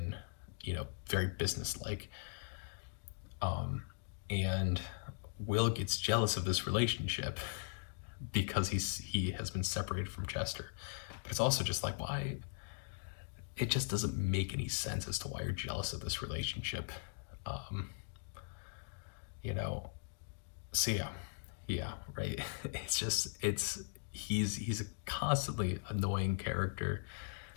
very business-like. And Will gets jealous of this relationship because he has been separated from Chester. But it's also just like, why? It just doesn't make any sense as to why you're jealous of this relationship. So yeah, right. He's a constantly annoying character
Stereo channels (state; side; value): silent; right; digital silence